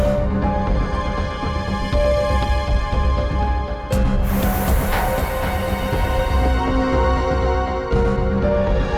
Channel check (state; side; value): identical; both; correlation 1.00